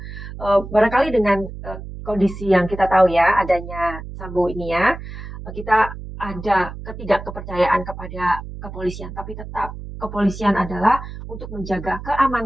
barangkali dengan kondisi yang kita tahu ya, adanya Sambo ini ya, kita ada ketidakkepercayaan kepada kepolisian, tapi tetap kepolisian adalah untuk menjaga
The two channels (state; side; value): noise; right; hum, 11 dB below the sound